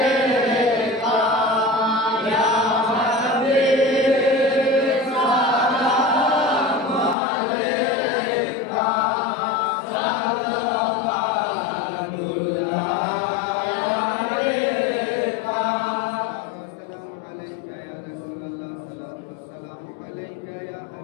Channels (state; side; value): drops out; right; at 7.2 s